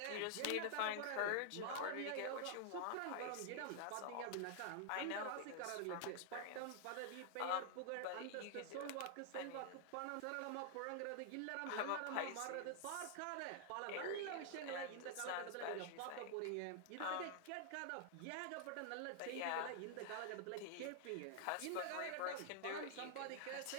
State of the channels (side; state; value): both; different; correlation 0.00